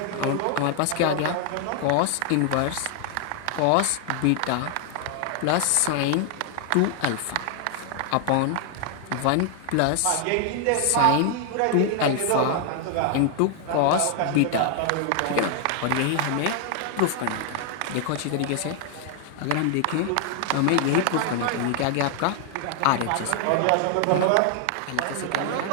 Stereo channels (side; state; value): both; different; correlation 0.00